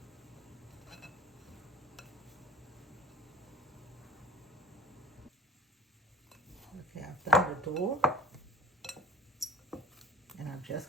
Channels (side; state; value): both; normal; correlation 0.46